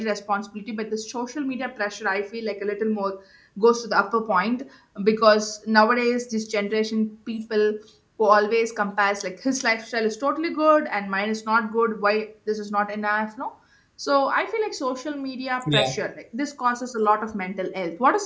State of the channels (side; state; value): both; identical; correlation 1.00